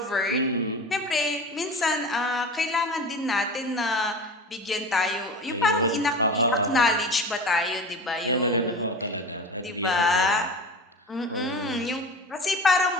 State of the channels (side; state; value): both; normal; correlation 0.32